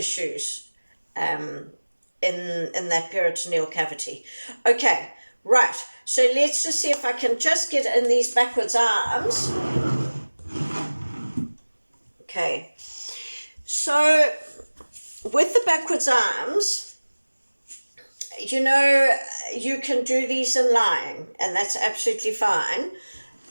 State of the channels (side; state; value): both; inverted; correlation -1.00